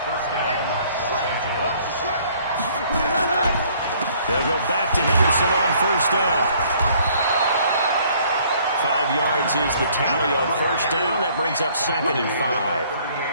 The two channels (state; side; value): inverted; both; correlation -0.60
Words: First down, Los Angeles. They'll go back to Henderson on first down. 5 yards is the tally on first down. That brings up 2nd and 5.